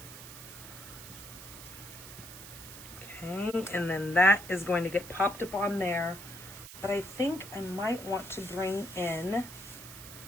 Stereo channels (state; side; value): noise; right; hiss, 14 dB below the sound